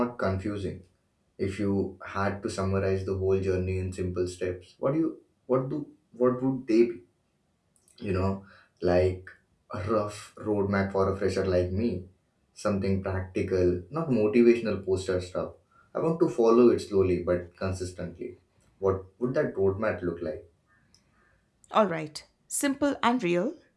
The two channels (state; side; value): identical; both; correlation 1.00